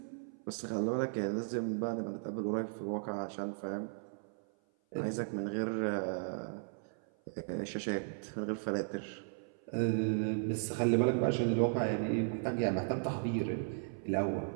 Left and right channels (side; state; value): left; silent; 54 dB below the other